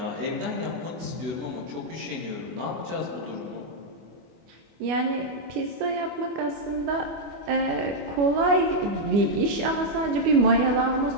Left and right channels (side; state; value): left; late; 25 ms